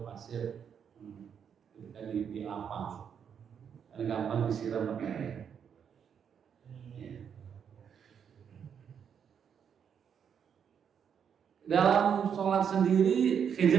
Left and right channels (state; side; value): quieter; left; 7.7 dB